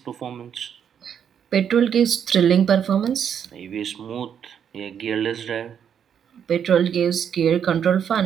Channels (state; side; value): quieter; left; 8.3 dB